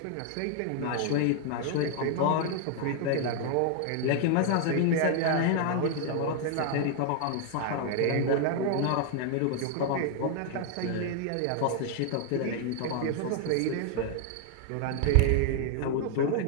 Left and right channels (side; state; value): both; different; correlation 0.00